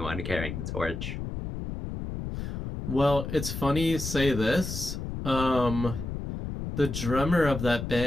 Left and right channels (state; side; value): noise; left; rumble, 5 dB below the sound